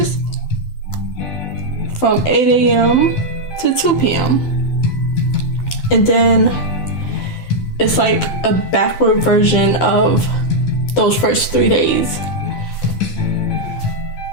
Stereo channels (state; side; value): late; right; 12 ms